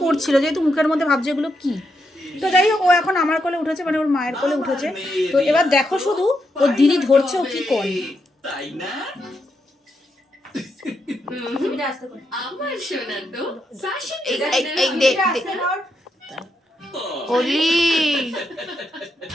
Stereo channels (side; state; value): both; normal; correlation 0.82